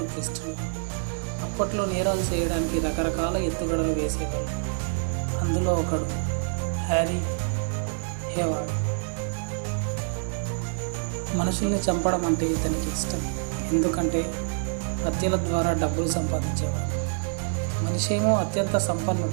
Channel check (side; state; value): left; silent; 60 dB below the other